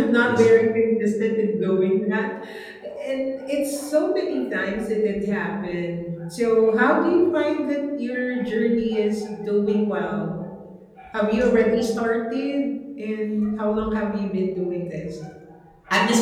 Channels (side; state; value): both; identical; correlation 1.00